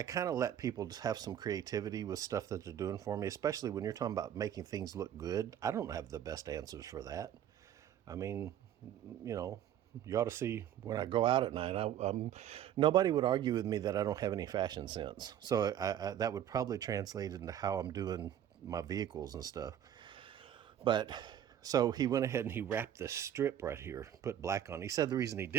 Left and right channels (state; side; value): quieter; left; 10.6 dB